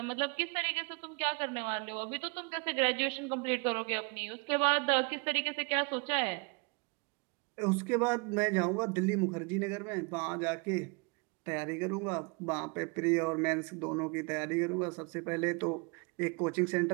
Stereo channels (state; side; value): quieter; left; 31.4 dB